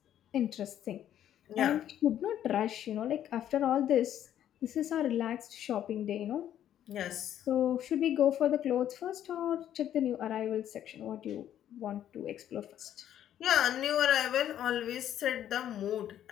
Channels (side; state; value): right; quieter; 10.9 dB